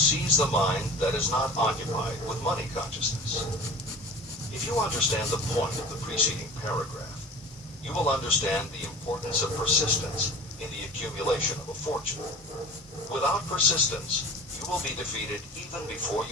the mind that is not occupied with money consciousness. If you understand the point of the preceding paragraph, you will understand the importance of persistence in the accumulation of a fortune. Without persistence, you will be defeated even before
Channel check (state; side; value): normal; both; correlation 0.39